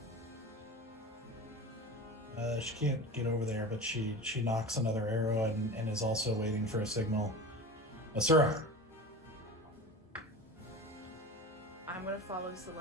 She can't get over there, but she knocks another arrow and is also waiting for a signal. Asura. I'm gonna follow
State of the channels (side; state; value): both; normal; correlation 0.31